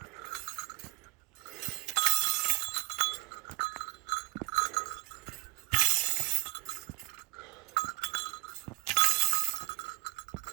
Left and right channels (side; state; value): left; quieter; 24.8 dB